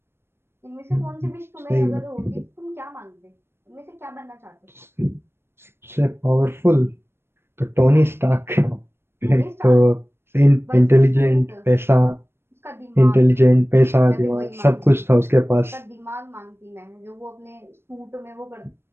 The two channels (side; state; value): left; late; 0.12 ms